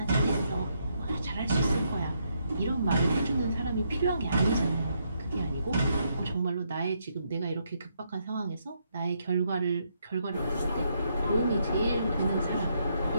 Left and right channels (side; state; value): both; inverted; correlation -0.76